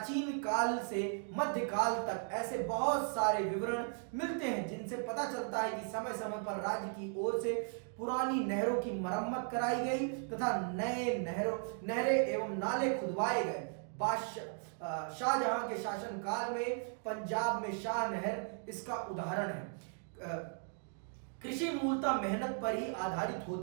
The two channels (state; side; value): silent; left; 53 dB below the other